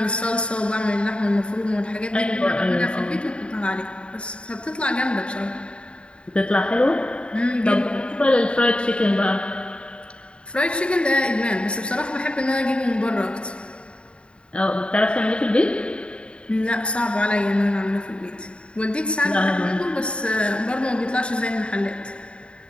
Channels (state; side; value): late; right; 0.055 ms